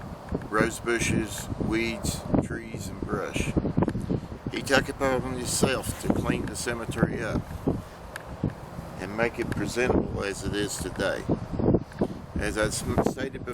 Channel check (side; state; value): both; identical; correlation 1.00